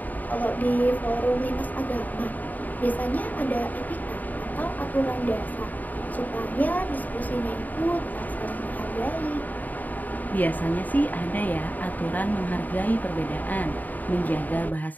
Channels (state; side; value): late; right; 0.082 ms